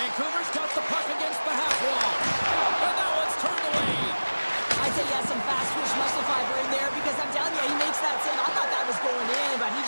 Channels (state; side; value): inverted; both; correlation -1.00